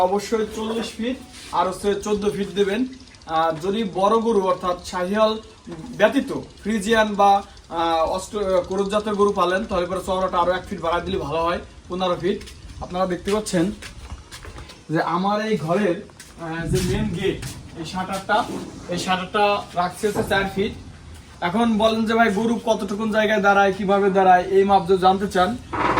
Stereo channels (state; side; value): identical; both; correlation 1.00